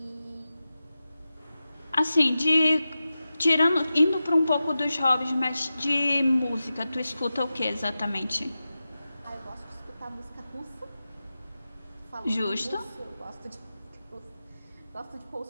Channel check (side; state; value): both; inverted; correlation -0.93